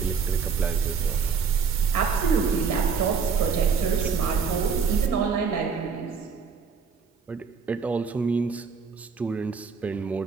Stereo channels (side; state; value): left; quieter; 5.9 dB